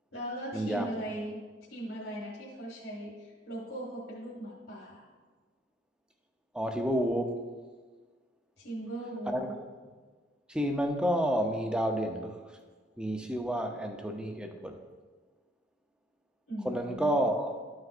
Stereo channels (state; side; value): normal; both; correlation 0.69